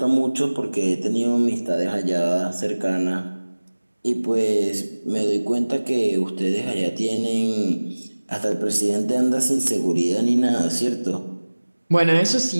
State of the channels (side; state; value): both; inverted; correlation -1.00